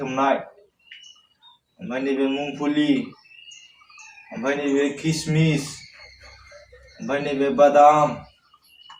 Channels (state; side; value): identical; both; correlation 1.00